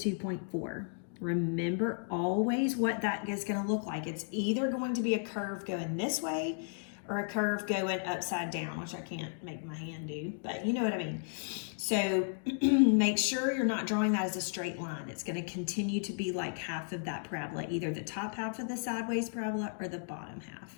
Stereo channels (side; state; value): right; silent; digital silence